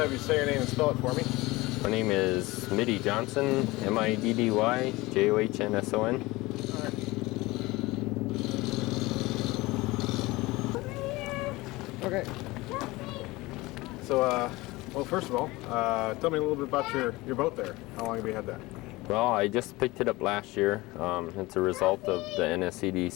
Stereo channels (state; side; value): quieter; right; 21.0 dB